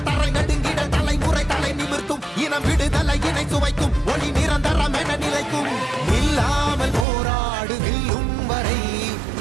தரை நடுங்கிட தலைமுறை தலை நிமிர்த்தும் இனம் விடுதலை இணை சுவைக்கும் ஒளி நிரந்தரம் என நிலைக்கும் இல்லாமல் போராடு வில்லும் வரை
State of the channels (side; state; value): left; drops out; at 7.1 s